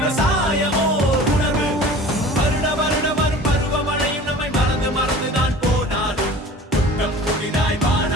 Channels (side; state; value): both; normal; correlation 0.42